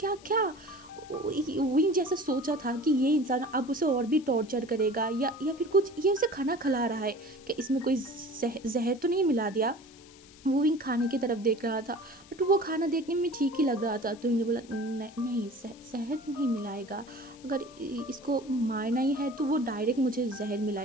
क्या विंग जैसा सोचा था कि ये इंसान अब उसे और भी टॉर्चर करेगा या फिर कुछ ये उसे खाना खिला रहा है, कि इसमें कोई जहर तो नहीं मिला दिया। वो विंग खाने की तरफ देख रहा था बट वो खाना देखने में ठीक ही लग रहा था। तो इन्हें बोला नहीं शहद नहीं मिलाएगा, अगर इसको मारना ही है तो वो डायरेक्ट मुझे जहर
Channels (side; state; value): left; noise; hiss, 23 dB below the sound